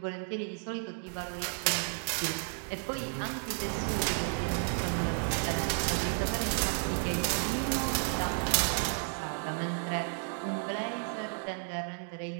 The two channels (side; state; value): left; silent; 56 dB below the other